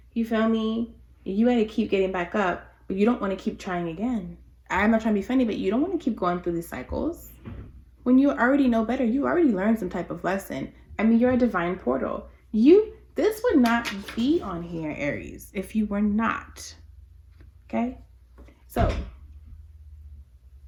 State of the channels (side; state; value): both; identical; correlation 1.00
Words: You feel me? You got to keep getting back up, but you don't want to keep trying again. I'm not trying to be funny, but you don't want to keep going through these cycles. When you already know better, you already learned some type of lesson. I mean, you're a divine portal. This would not be on here, Aries, if you were not. Okay? So,